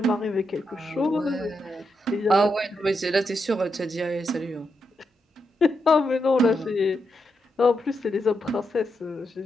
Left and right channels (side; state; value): both; normal; correlation 0.84